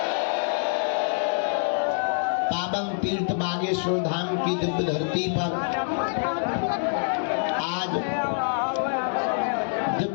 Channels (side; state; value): right; silent; 61 dB below the other